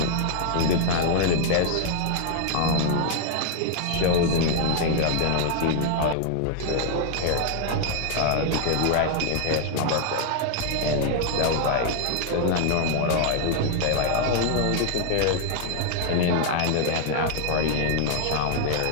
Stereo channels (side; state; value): both; different; correlation 0.00